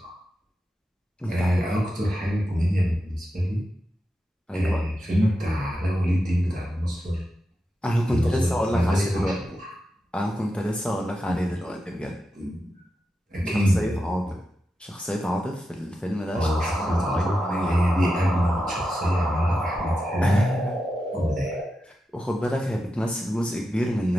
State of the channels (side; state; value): both; normal; correlation 0.89